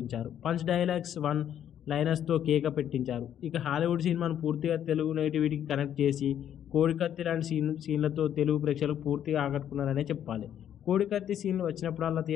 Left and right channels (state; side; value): quieter; right; 10.1 dB